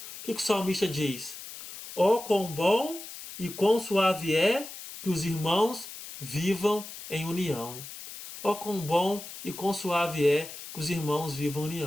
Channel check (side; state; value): left; noise; hiss, 12 dB below the sound